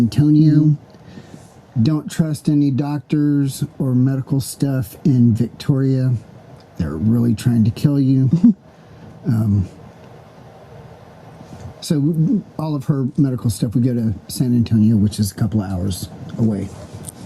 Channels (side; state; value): both; identical; correlation 1.00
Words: Don't trust any doctors or medical stuff in Victoria. They're really trying to kill you. So all of her medical stuff, we go to San Antonio, which is a couple of hours away.